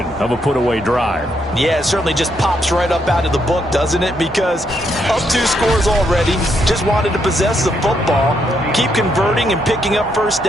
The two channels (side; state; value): both; normal; correlation 0.76